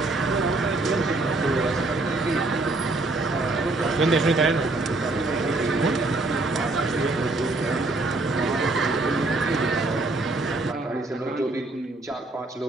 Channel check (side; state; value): left; quieter; 3.1 dB